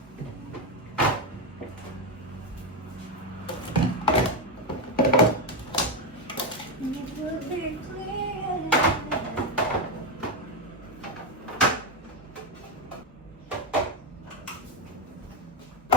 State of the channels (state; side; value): normal; both; correlation 0.08